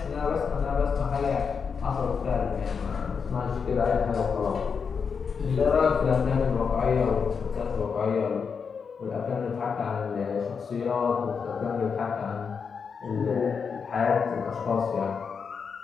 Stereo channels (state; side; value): quieter; right; 6.0 dB